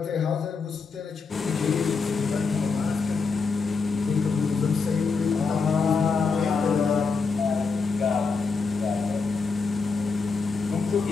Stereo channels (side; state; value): right; quieter; 4.7 dB